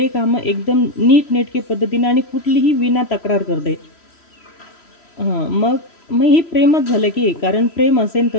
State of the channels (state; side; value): late; right; 3.0 ms